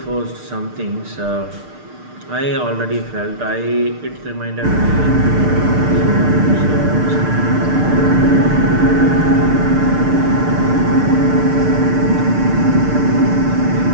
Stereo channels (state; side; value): late; left; 6.6 ms